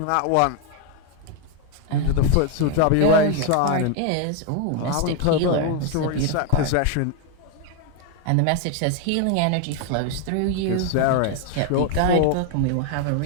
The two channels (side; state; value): both; different; correlation 0.01